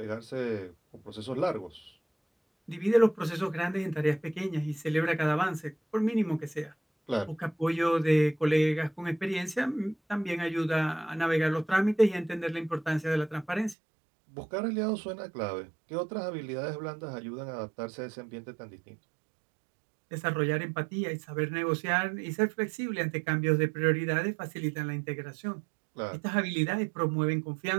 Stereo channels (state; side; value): drops out; left; at 13.8 s